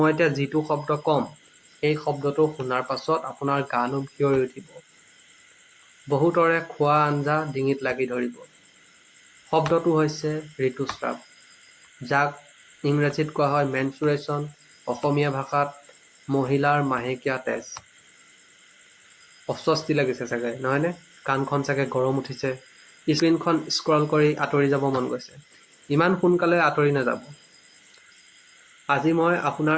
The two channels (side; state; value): both; identical; correlation 1.00